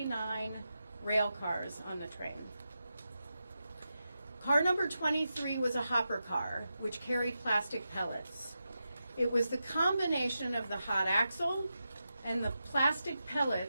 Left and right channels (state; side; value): inverted; both; correlation -0.89